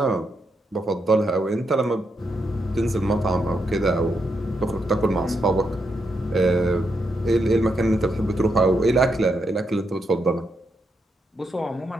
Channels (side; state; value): both; normal; correlation 0.81